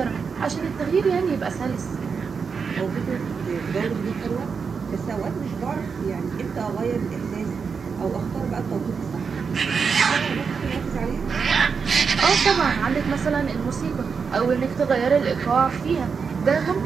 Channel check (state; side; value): quieter; left; 5.7 dB